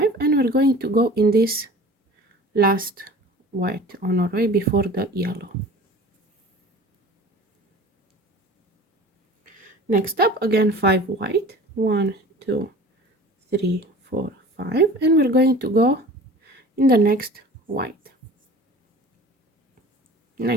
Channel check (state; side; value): normal; both; correlation 0.42